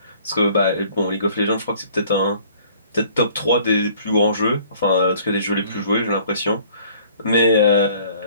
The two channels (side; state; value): both; inverted; correlation -0.56